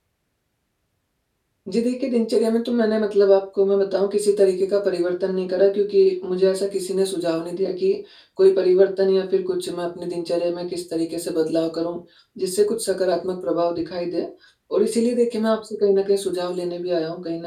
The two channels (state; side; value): identical; both; correlation 1.00